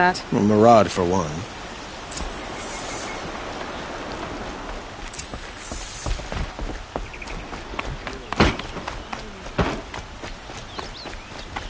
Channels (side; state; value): both; identical; correlation 1.00